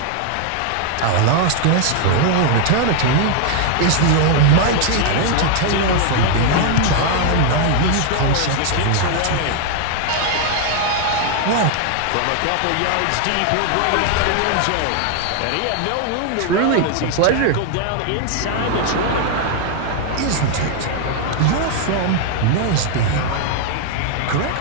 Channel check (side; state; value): both; different; correlation 0.00